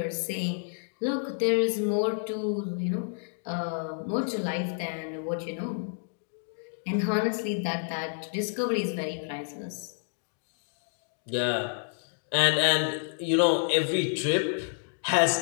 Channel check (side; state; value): right; silent; digital silence